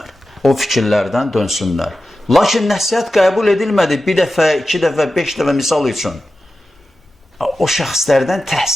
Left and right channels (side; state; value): both; normal; correlation 0.93